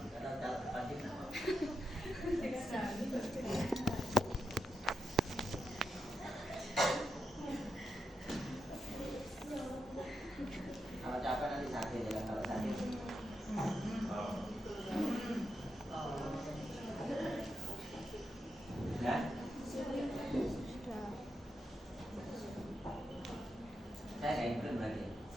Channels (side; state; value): both; normal; correlation 0.86